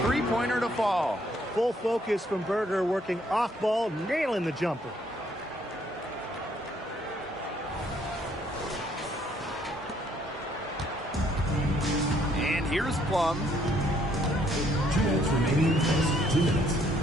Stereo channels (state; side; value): normal; both; correlation 0.67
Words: three-pointer to fall. Full focus from Berger, working off ball, nailing the jumper. And here's Plum. 2 minutes remaining in the first. 2 minutes.